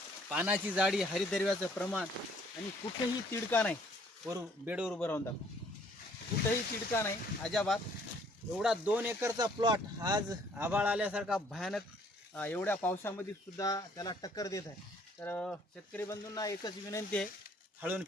पानाची जाडी, हरितद्रव्याचं प्रमाण आणि कुठेही तिडका नाही. बेडवर उभं राहून दाखव, कुठेही तिडका नाही अजाबात. एवढा 2 एकरचा प्लॉट आज आभाळ आल्यासारखा भयानक एवढ्या पावसामध्ये सुद्धा त्याला टक्कर देत आहे. तर शेतकरी बंधूंना एकच विनंती आहे, हळून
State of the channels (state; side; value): normal; both; correlation 0.61